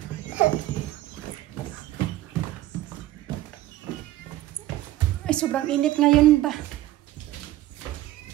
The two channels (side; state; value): left; quieter; 15.3 dB